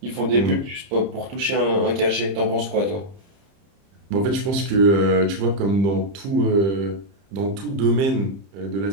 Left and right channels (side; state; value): left; late; 30 ms